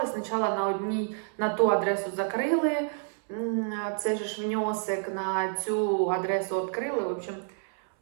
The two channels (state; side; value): silent; left; 58 dB below the other